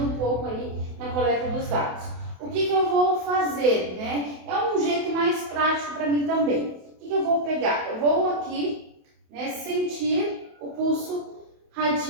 um pouco aí na coleta dos dados. O que eu vou fazer, né? É um jeito mais prático para mim também. O que eu vou pegar? Eu vou aqui, né, sentir o pulso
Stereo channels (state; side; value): late; left; 28 ms